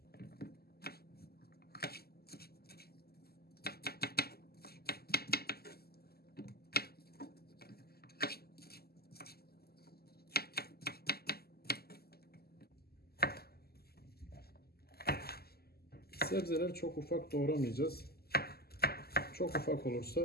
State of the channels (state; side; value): late; right; 0.46 ms